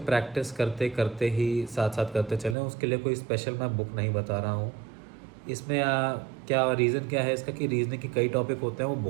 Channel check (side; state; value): left; drops out; at 2.6 s